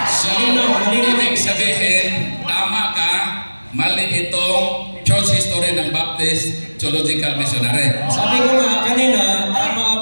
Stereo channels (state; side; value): inverted; both; correlation -1.00